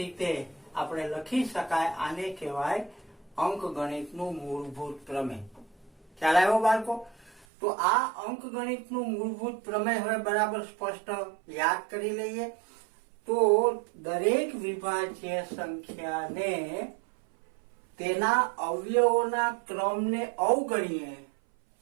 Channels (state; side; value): drops out; left; at 7.5 s